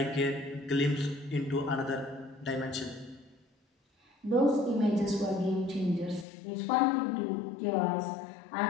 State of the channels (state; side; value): drops out; right; at 6.2 s